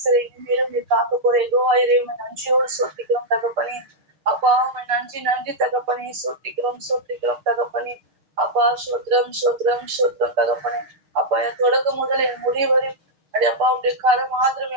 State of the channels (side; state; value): left; late; 6.7 ms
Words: இனிமேலும் நீ காக்க போற யெகோவாயிரே நன்றியோடு சோத்திக்கிறோம் தகப்பனே. அப்பா உண்மை நன்றி நன்றி தகப்பனே. சோத்திக்கிறோம் தகப்பனே. அப்பா ஸ்தோத்திரம் ஸ்தோத்திரம் ஸ்தோத்திரம் தகப்பனே. அப்பா என் தொடக்கம் முதல் என் முடிவு வரை அப்படி அப்பா உடைய காலம் மாத்திரம்